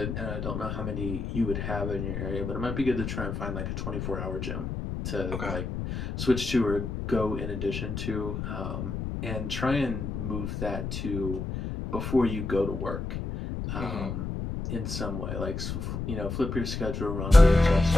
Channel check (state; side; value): noise; left; rumble, 4 dB below the sound